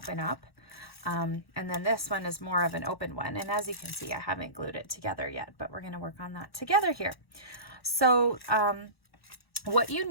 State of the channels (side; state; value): right; late; 1.1 ms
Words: up. And then this one is more of an open one. And as you can see, I haven't glued it together yet, but we're going to work on that together here. So what you